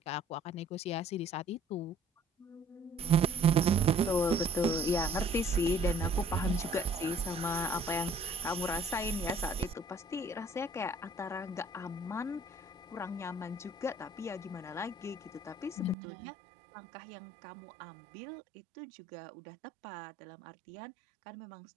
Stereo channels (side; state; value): left; drops out; at 16.0 s